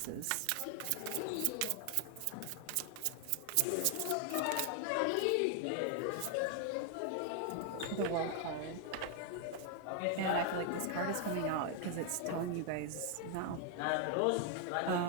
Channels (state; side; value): different; both; correlation 0.00